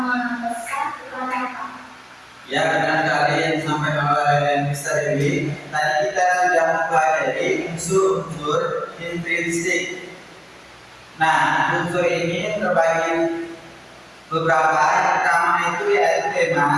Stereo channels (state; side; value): identical; both; correlation 1.00